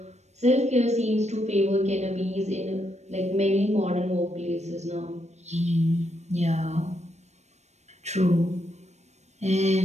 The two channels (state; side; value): late; left; 0.32 ms